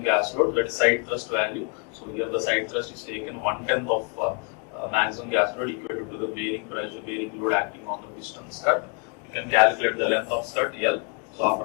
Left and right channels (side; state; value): right; quieter; 38.9 dB